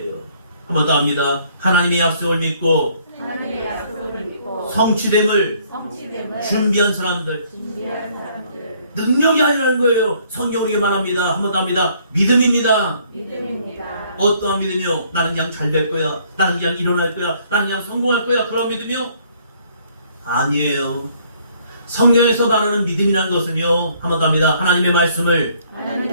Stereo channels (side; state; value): both; inverted; correlation -0.63